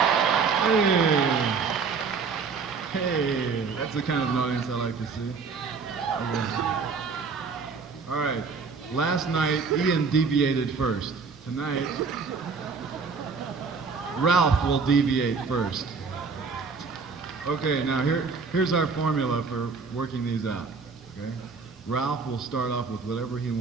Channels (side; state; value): left; quieter; 5.0 dB